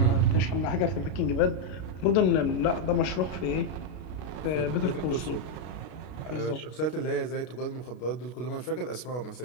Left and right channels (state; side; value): late; right; 32 ms